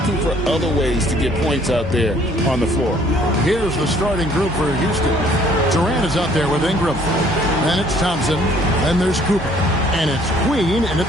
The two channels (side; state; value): both; normal; correlation 0.60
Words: for other ways to get points out there on the floor. Here's the starting group for Houston. Durant is out there with Ingram. Then it's Thompson. Then there's Cooper. And it's Queen in at